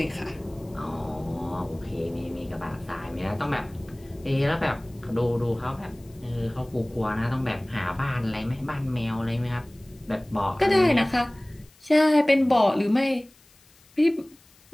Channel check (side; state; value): left; noise; hiss, 29 dB below the sound